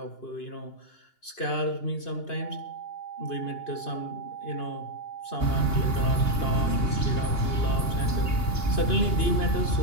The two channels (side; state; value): right; late; 2.8 ms